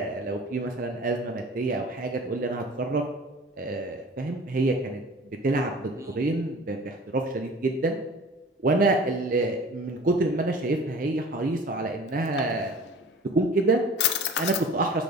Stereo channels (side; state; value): both; normal; correlation 0.43